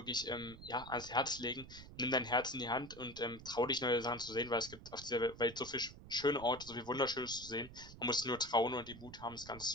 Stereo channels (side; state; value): right; noise; rumble, 16 dB below the sound